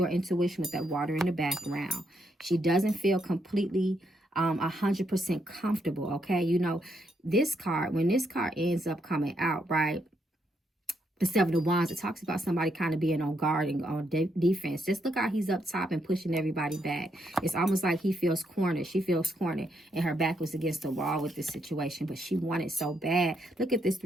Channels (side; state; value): both; normal; correlation 0.77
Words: her intuition with that water in the background. She doesn't feel completely 100% comfortable, okay? You know, this card, when this card ends up coming out, right? The 7 of Wands, it talks about somebody kind of being on guard and on defense. Just look how he's up top and pushing everybody back. It's almost like he feels cornered. She feels cornered, and her back was against the wall with this situation, but she wanted so bad. Look at this